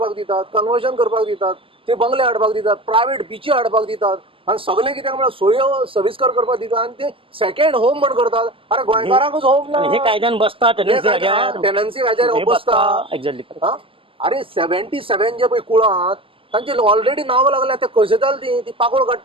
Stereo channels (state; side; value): late; left; 0.26 ms